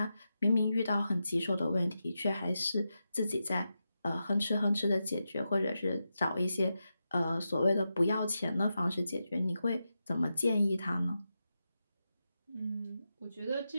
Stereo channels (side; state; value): both; inverted; correlation -0.89